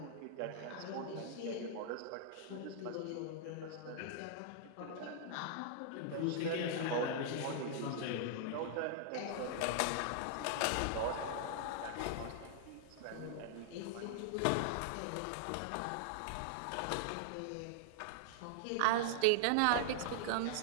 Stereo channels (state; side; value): different; both; correlation -0.01